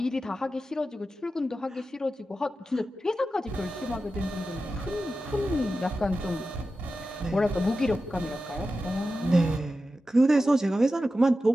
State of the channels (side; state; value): both; normal; correlation 0.92